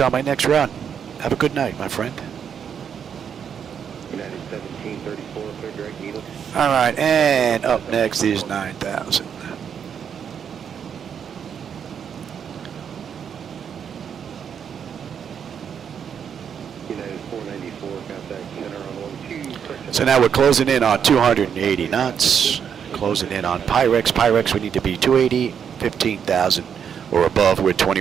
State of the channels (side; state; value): left; quieter; 7.7 dB